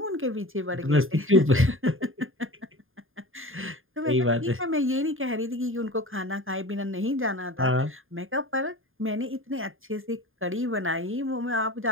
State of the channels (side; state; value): left; late; 0.59 ms